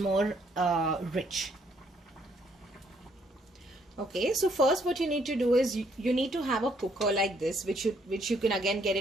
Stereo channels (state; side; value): normal; both; correlation 0.69